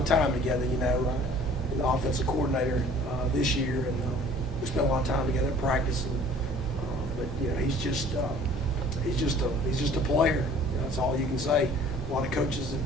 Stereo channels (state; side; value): normal; both; correlation 0.51